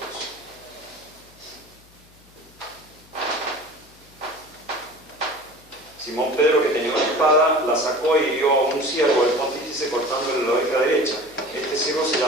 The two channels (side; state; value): left; noise; hum, 27 dB below the sound